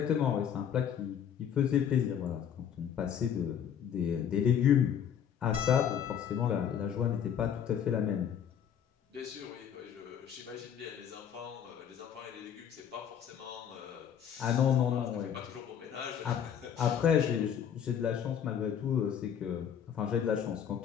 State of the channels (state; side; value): quieter; right; 8.7 dB